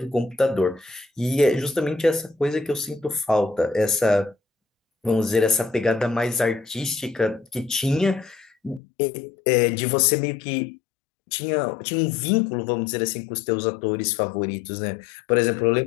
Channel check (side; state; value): right; drops out; at 8.8 s